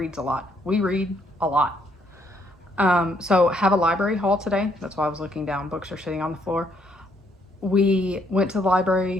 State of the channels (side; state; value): both; normal; correlation 0.70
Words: a lot. We read a lot. So have a library haul today. That's why I was looking down. Books are sitting on the floor. We went to the